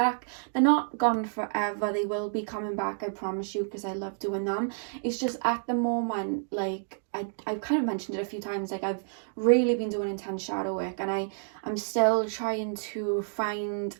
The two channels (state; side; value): silent; left; digital silence